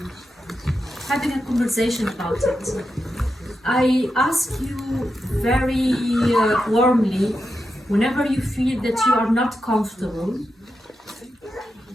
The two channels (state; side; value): normal; both; correlation 0.88